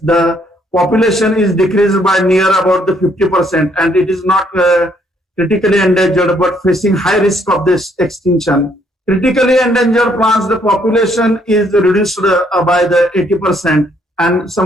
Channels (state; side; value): normal; both; correlation 0.68